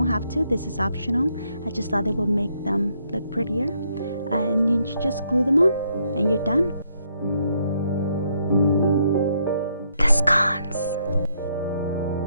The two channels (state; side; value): inverted; both; correlation -0.74